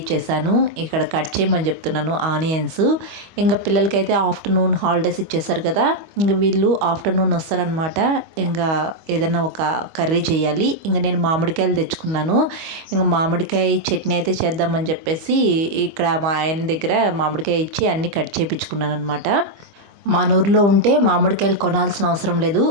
ఇక్కడ కట్ చేయమని చెప్తున్నాను ఆనియన్స్. ఇంకా పిల్లలకైతే ఆఫ్టర్నూన్ హాలిడేస్ ఇచ్చేసారు కదా, ఇంకా వీళ్ళు ఆఫ్టర్నూన్ వస్తారనమాట. ఇంకా ఏదైనా ఒక కర్రీ చేయాలి. ఇంకా నేను మామిడికాయలు తెచ్చుకున్నాను. ఇంకా మామిడికాయ చట్నీ అయితే చేద్దామని చెప్పేసి ఇక్కడ మా ఆయన దగ్గర మామిడికాయ ఇచ్చి అన్నీ కట్ చేయించుకున్నాను అనమాట. మన ఊర్లో ఉంటే మామిడికాయలు కొనాల్సిన అవసరం లేదు.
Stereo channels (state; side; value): late; left; 25 ms